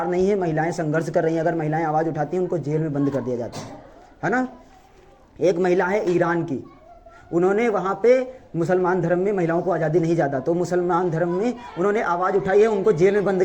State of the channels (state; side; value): identical; both; correlation 1.00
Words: नहीं है, महिलाएं संघर्ष कर रही हैं, अगर महिलाएं आवाज़ उठाती हैं उनको जेल में बंद कर दिया जाता है ना। एक महिला है ईरान की, उन्होंने वहाँ पे मुसलमान धर्म में महिलाओं को आज़ादी नहीं ज़्यादा, तो मुसलमान धर्म में उन्होंने आवाज़ उठाई है, उनको जेल में बंद